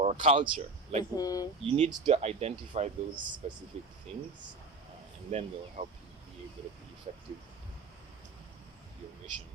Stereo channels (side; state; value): left; quieter; 3.8 dB